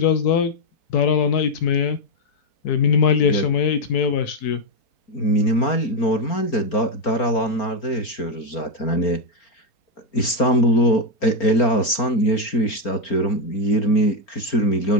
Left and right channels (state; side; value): late; right; 4.4 ms